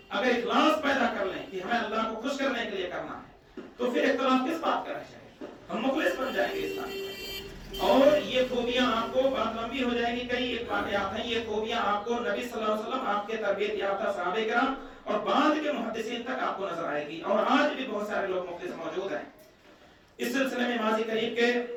اگر اخلاص پیدا کر لیں کہ ہمیں اللہ کو خوش کرنے کے لیے کرنا ہے تو پھر اختلاف کس بات کا رہ جائے گا، ہم مخلص بن جائیں گے اسلام میں۔ اور یہ خوبیاں آپ کو، بات لمبی ہو جائے گی، کئی ایک واقعات ہیں، یہ خوبیاں آپ کو نبی صلی اللہ علیہ وسلم، آپ کے تربیت یافتہ صحابہ کرام اور بعد کے محدثین تک آپ کو نظر آئے گی، اور آج بھی بہت سارے لوگ مخلص موجود ہیں۔ اس سلسلے میں ماضی قریب کے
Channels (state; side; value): identical; both; correlation 1.00